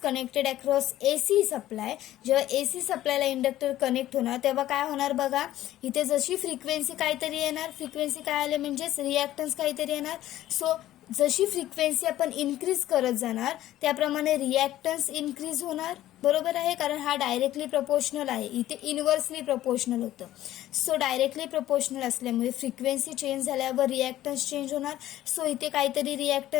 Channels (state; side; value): quieter; right; 14.0 dB